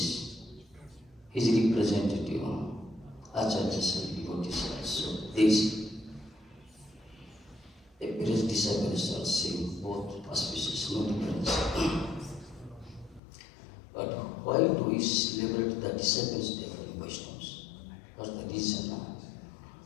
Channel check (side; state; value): right; drops out; at 13.2 s